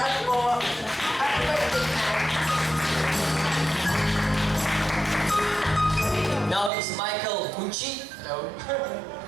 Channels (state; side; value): drops out; left; at 6.7 s